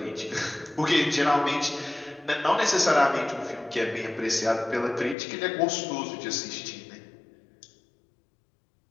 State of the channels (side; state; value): right; drops out; at 5.2 s